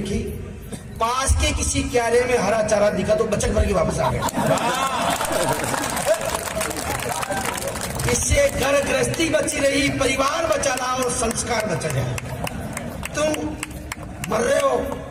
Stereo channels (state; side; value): identical; both; correlation 1.00